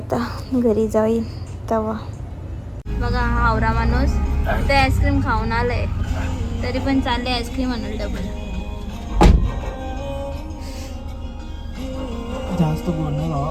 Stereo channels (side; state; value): both; identical; correlation 1.00